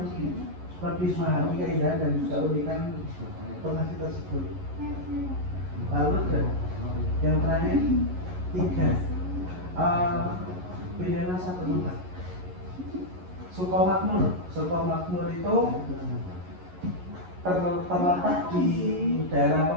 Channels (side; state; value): left; late; 11 ms